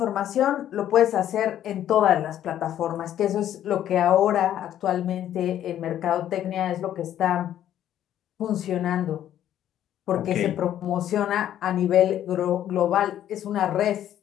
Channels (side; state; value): right; quieter; 11.3 dB